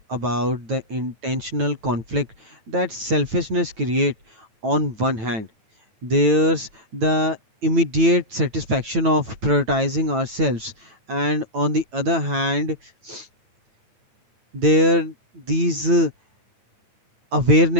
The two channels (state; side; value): late; left; 9.1 ms